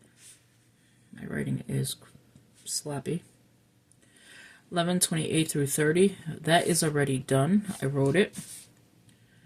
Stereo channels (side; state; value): both; identical; correlation 1.00